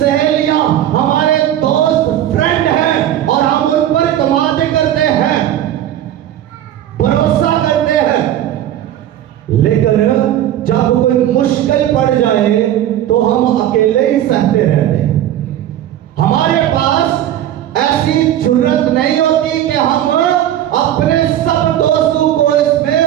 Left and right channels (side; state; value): left; quieter; 11.8 dB